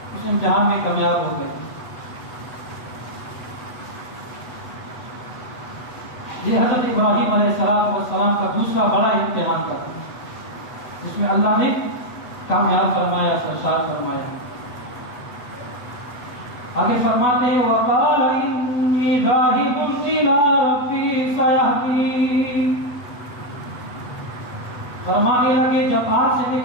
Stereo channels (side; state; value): right; late; 8.1 ms